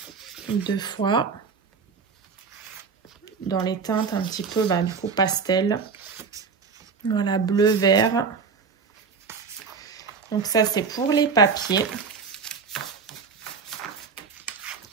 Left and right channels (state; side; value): quieter; left; 5.4 dB